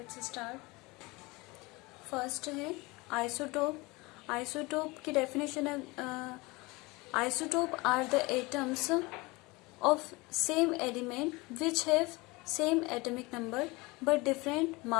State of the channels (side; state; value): right; quieter; 23.8 dB